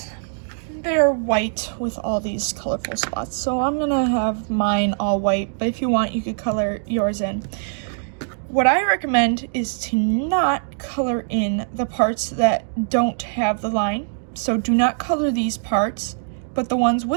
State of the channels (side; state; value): left; silent; digital silence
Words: they're white with all these colorful spots. So I'm gonna have mine all white, but if you want, you could color yours in. What I recommend is to not color in the parts that don't have the line. So do not color these parts, but the ones